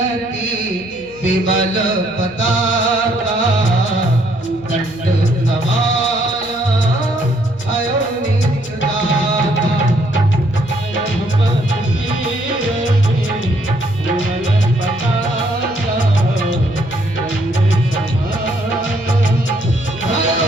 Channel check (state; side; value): noise; left; hum, 22 dB below the sound